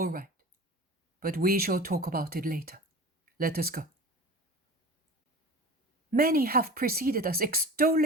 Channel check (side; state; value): both; normal; correlation 0.36